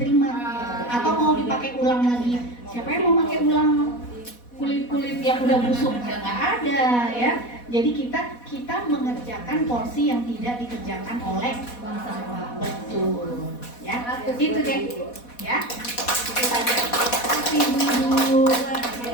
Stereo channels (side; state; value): right; late; 4.1 ms